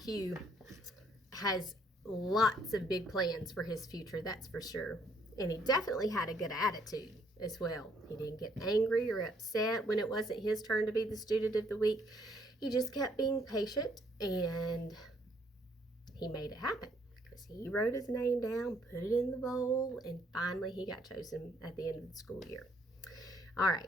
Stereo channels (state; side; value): normal; both; correlation 0.67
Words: has lots of big plans for his future, that's for sure. And he definitely had a good attitude as well. He didn't get angry or upset when it wasn't his turn to be the Student of the Week. He just kept being patient, and he made it happen because he wrote his name down, put it in the bowl, and finally he got chosen at the end of the school year. All